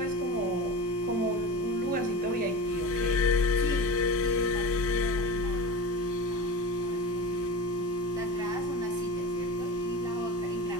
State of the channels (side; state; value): both; normal; correlation 0.29